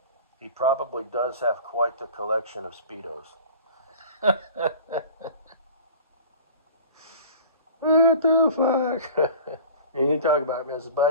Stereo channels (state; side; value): inverted; both; correlation -0.41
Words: He probably does have quite the collection of Speedos. What the fuck? And you talk about Mrs.